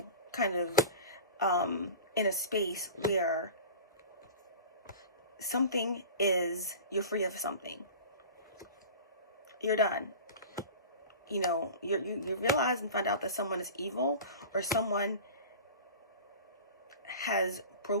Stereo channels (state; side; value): inverted; both; correlation -0.35